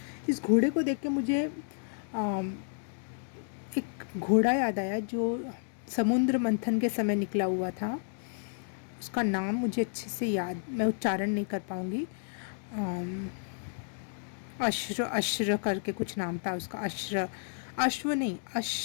इस घोड़े को देख के मुझे एक घोड़ा याद आया जो समुद्र मंथन के समय निकला हुआ था। उसका नाम मुझे अच्छे से याद, मैं उच्चारण नहीं कर पाऊँगी। अश्र करके कुछ नाम था उसका। अश्व नहीं,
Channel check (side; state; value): right; silent; digital silence